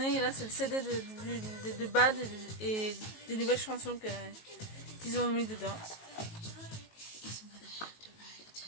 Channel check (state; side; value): late; right; 19 ms